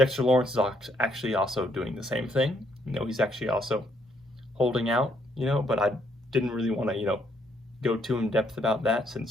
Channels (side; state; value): both; normal; correlation 0.71